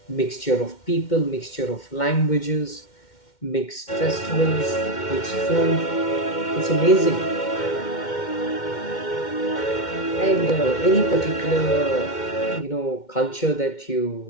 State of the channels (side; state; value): right; late; 2.1 ms